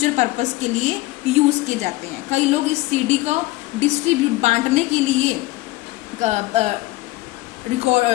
पर्पस के लिए यूज़ किए जाते हैं। कई लोग इस CD को डिस्ट्रीब्यूट बांटने के लिए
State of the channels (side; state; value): right; quieter; 19.1 dB